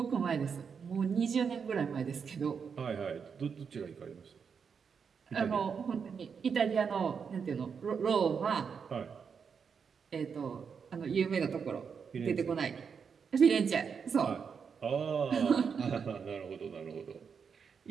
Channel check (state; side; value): quieter; left; 6.3 dB